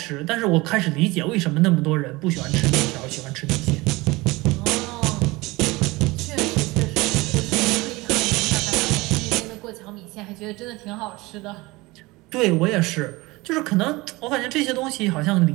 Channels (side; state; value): left; quieter; 22.1 dB